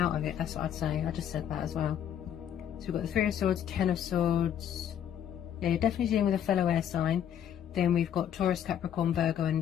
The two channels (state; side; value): quieter; right; 9.7 dB